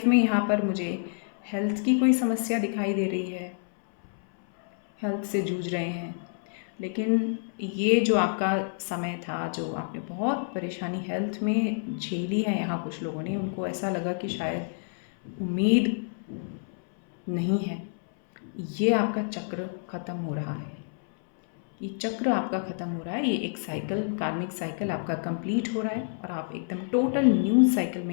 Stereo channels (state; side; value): silent; right; 59 dB below the other